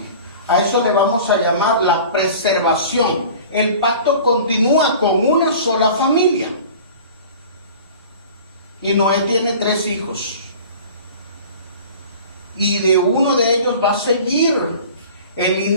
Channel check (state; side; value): inverted; both; correlation -0.42